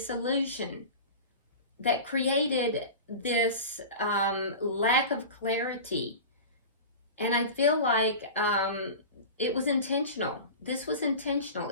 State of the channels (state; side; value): inverted; both; correlation -0.32